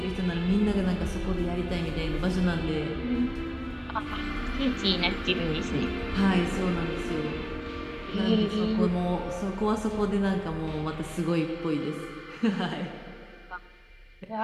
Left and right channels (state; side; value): identical; both; correlation 1.00